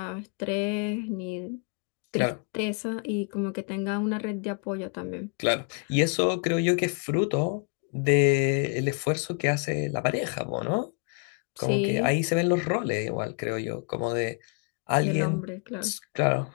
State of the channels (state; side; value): quieter; right; 36.9 dB